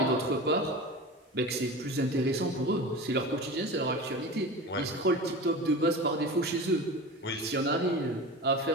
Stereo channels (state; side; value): normal; both; correlation 0.31